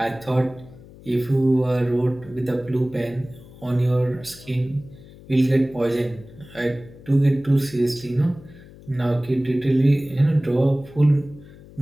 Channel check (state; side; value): noise; left; hum, 20 dB below the sound